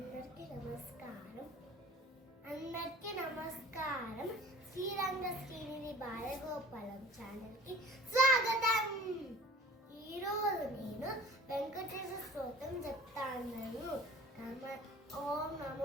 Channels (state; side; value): normal; both; correlation 0.45